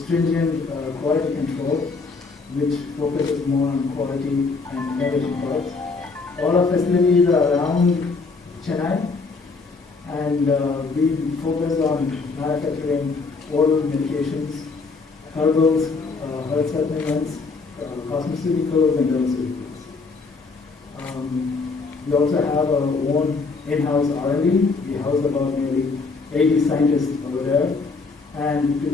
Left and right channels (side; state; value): right; quieter; 4.3 dB